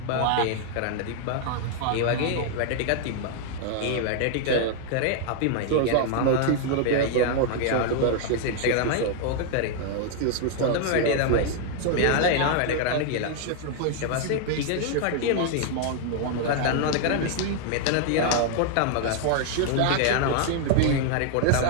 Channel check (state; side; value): different; both; correlation 0.00